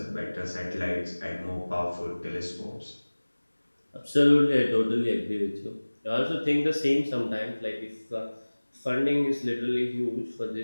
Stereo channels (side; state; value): both; inverted; correlation -1.00